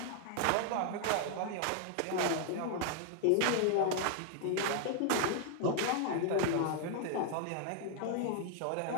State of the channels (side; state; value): both; different; correlation 0.00